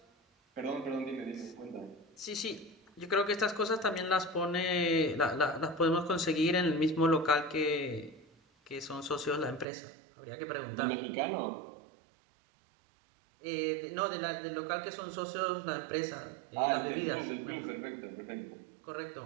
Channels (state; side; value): drops out; left; at 9.7 s